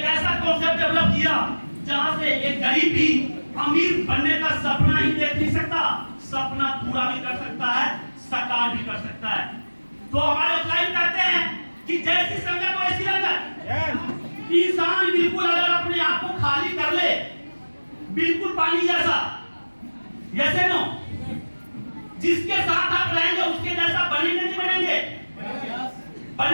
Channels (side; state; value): both; inverted; correlation -1.00